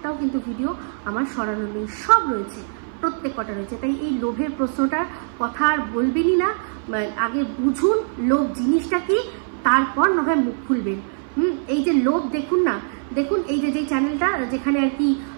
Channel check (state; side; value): silent; left; 58 dB below the other